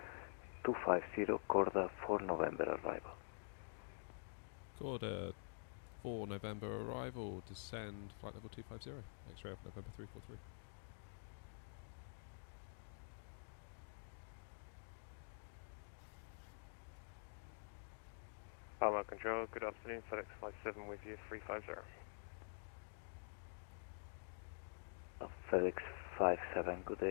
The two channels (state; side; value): silent; right; digital silence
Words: 250, Corda 4 November arrival. Corda 4 November arrival, descend flight level 250, X-ray Alpha November 343. Palma Control, good afternoon, FedEx 57 with you, 350. FedEx 57, good